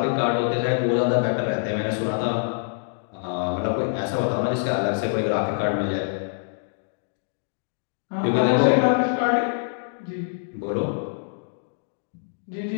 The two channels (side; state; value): right; silent; digital silence